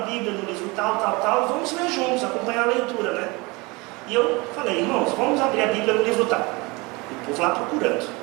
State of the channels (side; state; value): left; quieter; 25.5 dB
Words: Bíblia no livro tal, vamos ler juntos, acompanhar a leitura, né? E eu falei: irmãos, vamos abrir a Bíblia no livro tal. E o povo lá